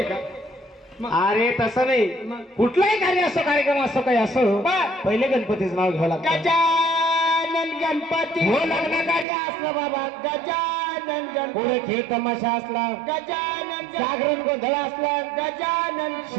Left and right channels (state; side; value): drops out; left; at 9.2 s